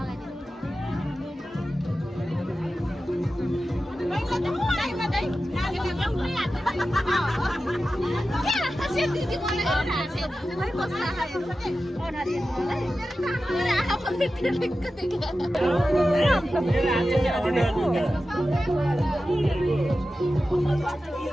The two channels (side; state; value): both; normal; correlation 0.93